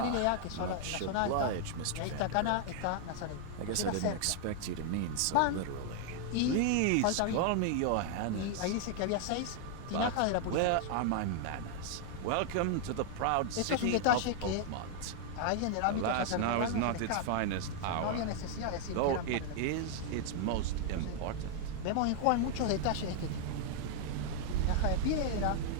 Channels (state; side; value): different; both; correlation 0.00